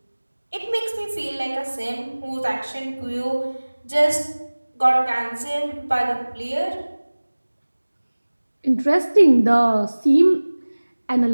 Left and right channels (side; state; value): both; inverted; correlation -1.00